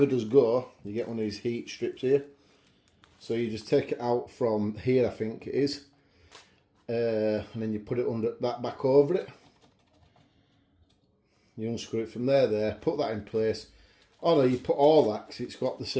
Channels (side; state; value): both; identical; correlation 1.00